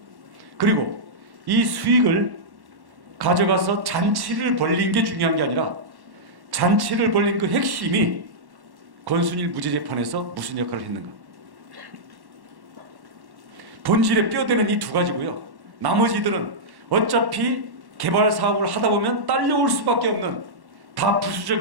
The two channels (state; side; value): late; left; 1.1 ms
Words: 그리고 이 수익을 가져가서 잔치를 벌린 게 중요한 게 아니라 잔치를 벌린 그 핵심이 권순일 무죄재판에서 무슨 역할을 했는가? 본질에 뼈대는 이 두 가지고요. 나머지들은 어차피 개발 사업을 하다 보면 딸려올 수밖에 없는 다